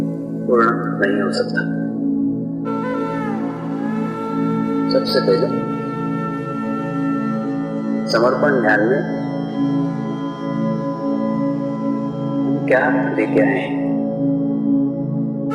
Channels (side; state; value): both; identical; correlation 1.00